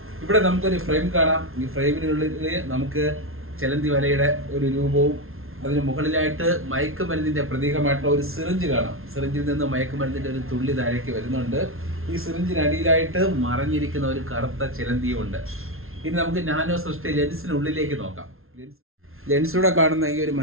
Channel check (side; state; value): left; late; 0.61 ms